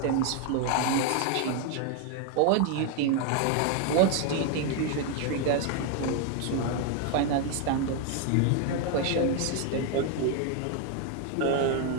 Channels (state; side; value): different; both; correlation 0.01